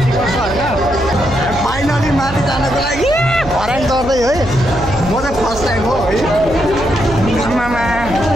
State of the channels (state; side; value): noise; right; hum, 11 dB below the sound